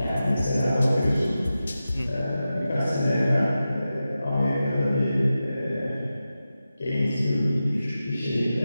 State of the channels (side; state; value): both; inverted; correlation -0.93